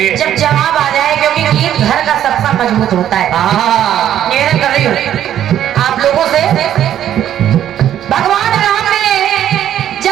जब जवाब आ जाए, क्योंकि गीत घर का सबका मजबूत होता है। निवेदन कर रही हूँ आप लोगों से। भगवान राम ने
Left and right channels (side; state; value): left; quieter; 11.0 dB